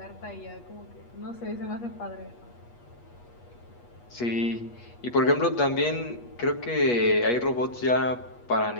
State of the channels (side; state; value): right; late; 8.3 ms